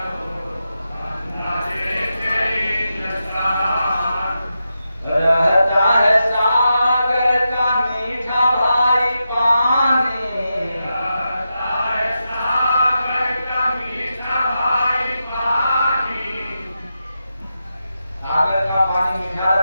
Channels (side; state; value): both; inverted; correlation -0.88